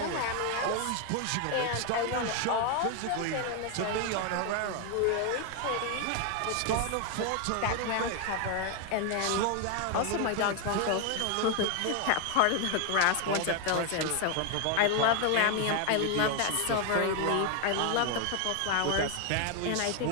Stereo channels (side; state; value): both; different; correlation 0.01